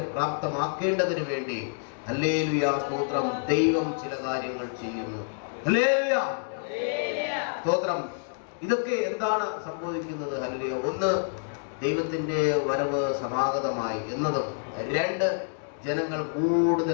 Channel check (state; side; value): silent; right; digital silence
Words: പ്രാപ്തമാക്കേണ്ടതിന് വേണ്ടി ഹല്ലേലൂയ സ്തോത്രം ദൈവം ചില കാര്യങ്ങൾ ചെയ്യുന്നു. ഹല്ലേലൂയ സ്തോത്രം. ഇതൊക്കെ എന്താണ് സംഭവിക്കുന്നത്? ഹല്ലേലൂയ. ഒന്ന്, ദൈവത്തിന്റെ വരവ് സമാഗതമായി എന്നതും. രണ്ട്, ജനങ്ങൾ